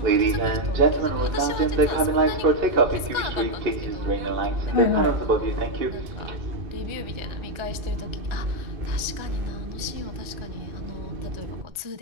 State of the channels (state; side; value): late; left; 1.4 ms